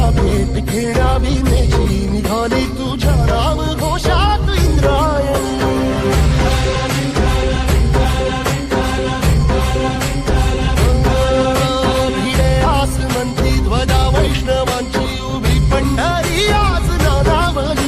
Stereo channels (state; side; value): identical; both; correlation 1.00